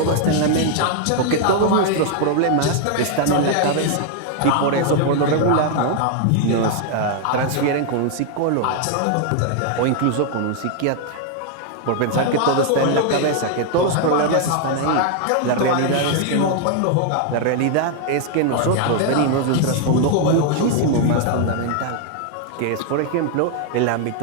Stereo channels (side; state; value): both; different; correlation 0.00